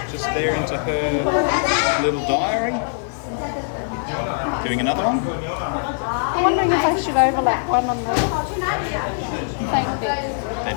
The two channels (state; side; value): silent; right; digital silence